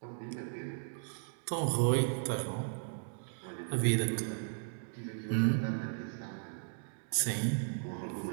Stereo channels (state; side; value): silent; left; digital silence